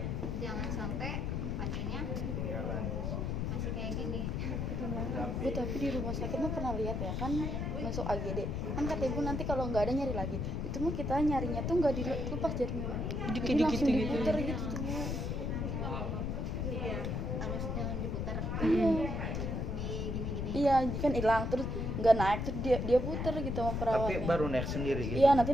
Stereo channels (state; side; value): noise; left; rumble, 1 dB below the sound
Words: Jangan sampai pasiennya masih kayak gini. Bu, tapi di rumah sakit mah pernah lihat ya kan, masuk AGD kan kata ibu nanti kalau nggak ada nyari lagi. Itu mah kita nyarinya tuh nggak dilepas jarinya, jadi langsung diputer gitu tuh Bu. Iya, harus jangan diputar. Di gini-gini. Iya kan hilang terus nggak naik, terus dia puter gitu sama Tapi perawatnya. baru naik sendiri gitu. Iya,